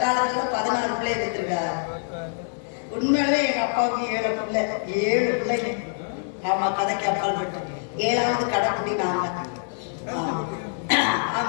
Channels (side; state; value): right; silent; digital silence